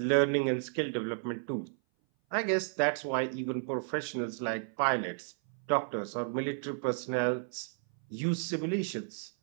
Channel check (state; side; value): silent; left; 56 dB below the other